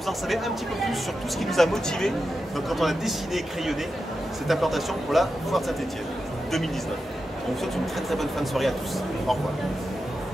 vous en savez un petit peu plus sur tout ce qui nous a motivés quand on a dessiné et crayonné cette implantation pour la foire de Saint-Étienne 2019. On vous souhaite une très bonne fin de soirée à tous. Au revoir.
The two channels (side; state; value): both; normal; correlation 0.89